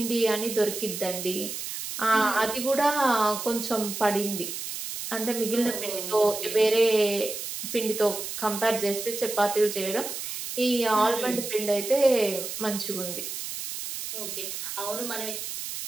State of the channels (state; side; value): noise; right; hiss, 6 dB below the sound